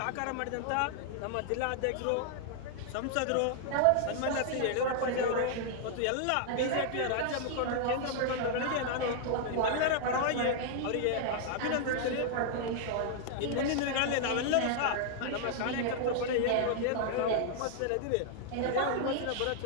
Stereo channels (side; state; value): both; different; correlation -0.01